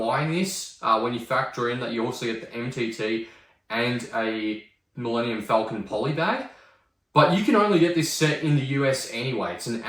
this when you factor in that you also get the MTT and a Millennium Falcon poly bag. But you can only get this set in the US anyway. It's an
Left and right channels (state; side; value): identical; both; correlation 1.00